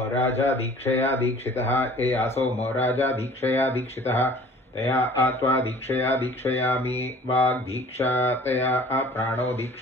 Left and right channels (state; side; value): normal; both; correlation 0.48